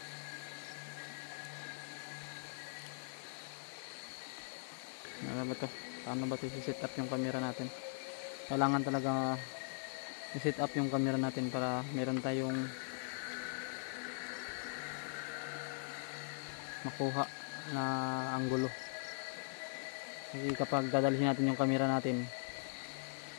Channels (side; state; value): right; silent; 51 dB below the other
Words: Ano ba to? Paano ba ito i-set up yung camera natin? Kailangan talaga i-set up yung camera natin para meron tayong makuha na anggulo. Kasi kapag dadalhin natin yung camera natin,